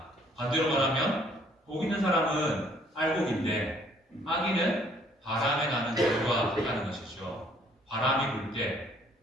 반대로 말하면 복 있는 사람은 알곡인데 악인은 바람에 나는 겨와 같다는 것이죠. 바람이 불 때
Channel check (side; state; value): both; normal; correlation 0.62